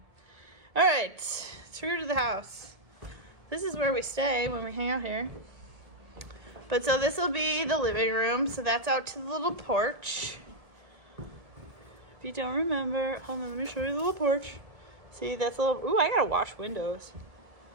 All right, through to the house. This is where we stay when we hang out here. But so this will be the living room. So that's out to the little porch. If you don't remember, hold on, let me show you the little porch. See, that's a little, ooh, I gotta wash windows.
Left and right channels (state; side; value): late; left; 1.7 ms